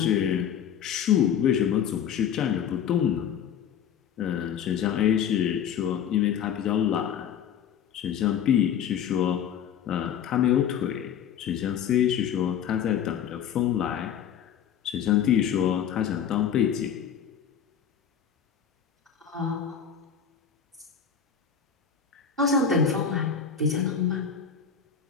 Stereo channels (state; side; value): quieter; right; 8.3 dB